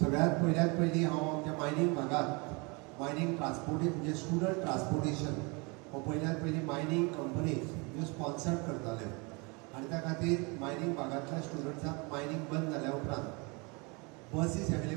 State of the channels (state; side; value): quieter; left; 29.6 dB